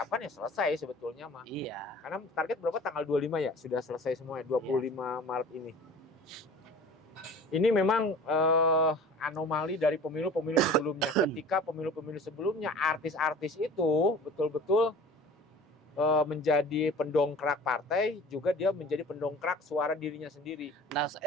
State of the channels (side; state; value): both; normal; correlation 0.42